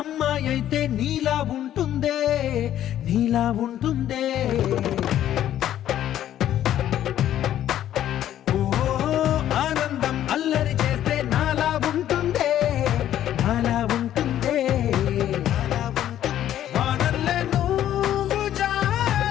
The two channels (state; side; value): quieter; right; 11.7 dB